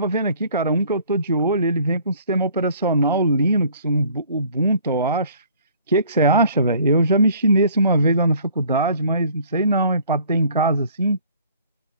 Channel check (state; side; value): inverted; both; correlation -0.54